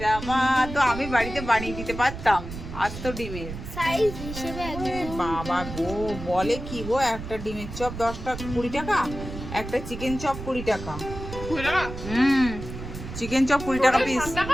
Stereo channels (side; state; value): right; noise; rumble, 9 dB below the sound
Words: রামা, তো আমি বাড়িতে বানিয়ে দিতে পারতাম আস্ত ডিমের। সাইজ হিসেবে ওরে একদম বাবা গো, বলে কি গো, একটা ডিমের চপ 10 টাকা 20 টাকা, একটা চিকেন চপ 20 টাকা। বুঝলা না? চিকেন চপ 20 টাকা পিস। 7